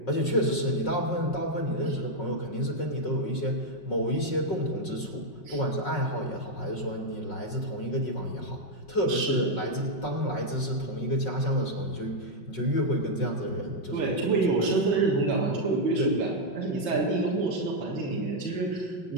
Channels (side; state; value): right; late; 5.4 ms